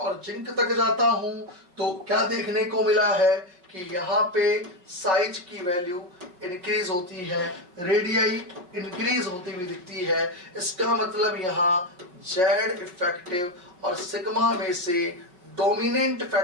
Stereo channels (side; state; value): left; late; 5.4 ms